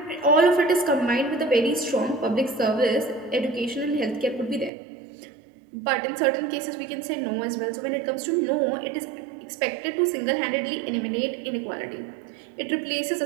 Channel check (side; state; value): left; drops out; at 4.7 s